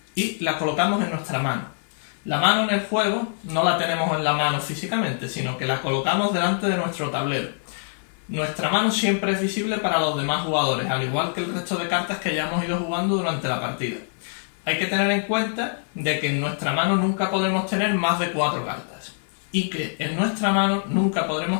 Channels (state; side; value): silent; right; 62 dB below the other